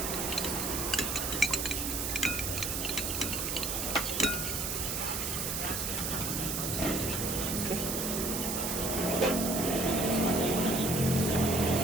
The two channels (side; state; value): right; noise; hiss, 1 dB below the sound